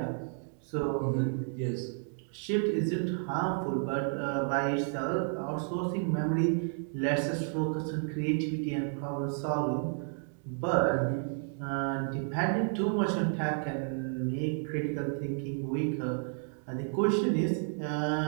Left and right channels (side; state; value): left; silent; 57 dB below the other